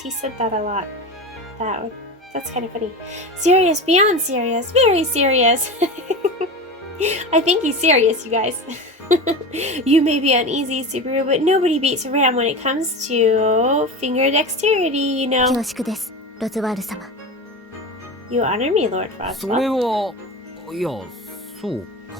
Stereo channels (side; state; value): both; normal; correlation 0.27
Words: said that a lot. That's kind of funny. Serious, beyond serious, very serious. I think he's serious, you guys. You may be uneasy, Subaru, but nobody beats Ram when it comes to finger dexterity, you know. 恐縮です、ロズワール様。 You honor me, Lord それ Roswell. はいやそうか